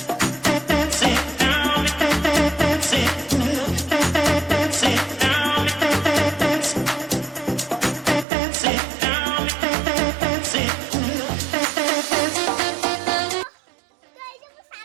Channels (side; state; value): left; drops out; at 8.2 s